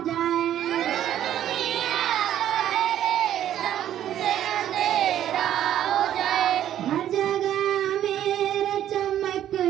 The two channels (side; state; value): left; quieter; 11.3 dB